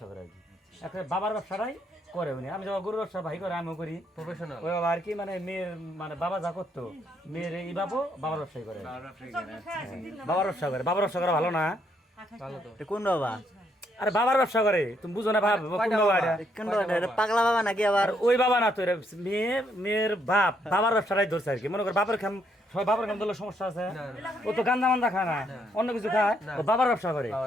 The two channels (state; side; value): normal; both; correlation 0.73